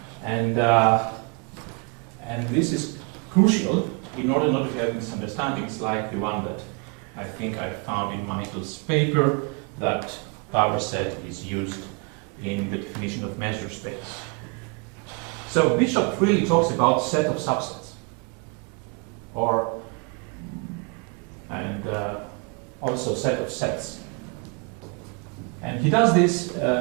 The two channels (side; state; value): left; quieter; 32.8 dB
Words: And this is crucial in order not to have misunderstandings like the one that I think I found in Michael's paper, that power set is used in the definition of measure space. So Bishop really talks about set of subsets, and also set of sets. And he does this